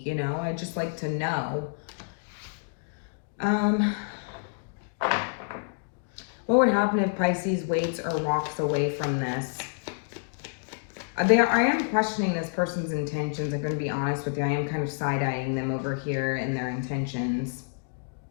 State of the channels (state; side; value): silent; right; digital silence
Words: you know, I'd just like to know. What would happen if Pisces waits or walks away from this? I am questioning this person's intentions. I'm going to be honest with you. I am kind of side-eyeing them over here in their intentions.